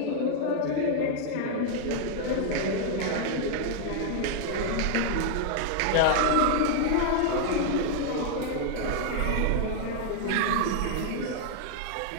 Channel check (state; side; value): different; both; correlation 0.00